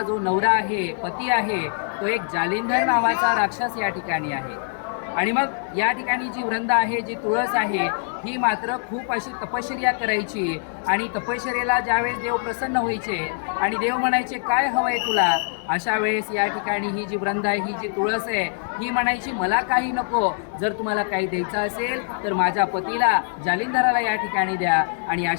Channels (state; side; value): silent; right; digital silence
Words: जो नवरा आहे, पती आहे, तो एक जालिंधर नावाचा राक्षस या ठिकाणी आहे. आणि मग या ठिकाणी जी वृंदा आहे, जी तुळस आहे, ही मात्र खूप अशी तपश्चर्या करायची आणि तपश्चर्येला ज्यावेळेस देव प्रसन्न व्हायचे आणि देव म्हणायचे काय हवंय तुला, अशा वेळेस या ठिकाणी ही जी वृंदा आहे, ही जी तुळस आहे, ही म्हणायची मला काही नको, जर तुम्हाला काही द्यायचं असेल तर माझ्या पतीला जालिंधराला या ठिकाणी द्या. आणि